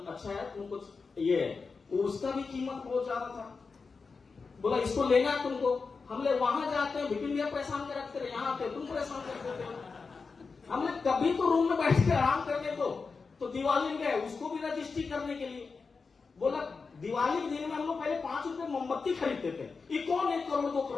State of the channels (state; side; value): quieter; right; 4.7 dB